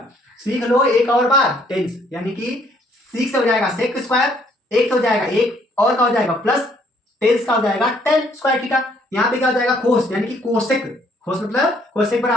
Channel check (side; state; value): both; normal; correlation 0.65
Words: सीख लो एक और बार टेंस, यानी कि सीख से हो जाएगा सेक स्क्वायर, एक से हो जाएगा एक, और का हो जाएगा प्लस, टेंस का हो जाएगा टेन स्क्वायर थीटा। यहाँ पे क्या हो जाएगा, कोस, यानी कि कोसेक, कोस मतलब कोसेक